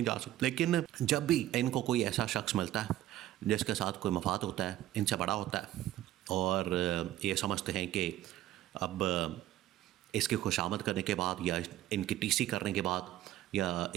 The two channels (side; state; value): left; quieter; 13.9 dB